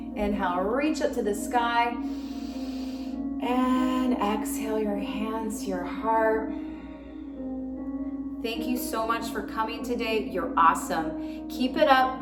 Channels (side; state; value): both; identical; correlation 1.00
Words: Inhale, reach up to the sky. And exhale your hands to your heart. Thank you so much for coming today. You're awesome. Keep it